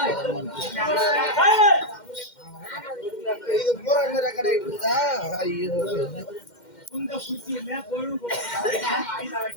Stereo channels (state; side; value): late; right; 2.1 ms